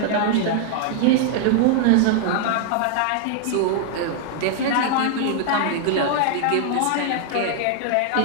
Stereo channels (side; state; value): both; different; correlation 0.00